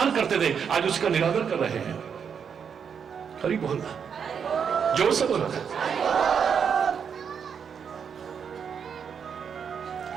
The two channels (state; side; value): quieter; left; 7.1 dB